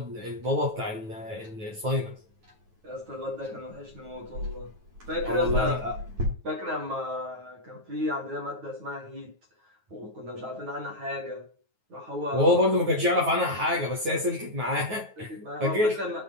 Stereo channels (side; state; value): left; late; 9.3 ms